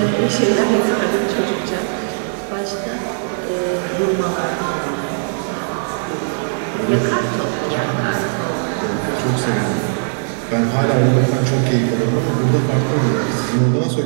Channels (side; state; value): left; silent; 63 dB below the other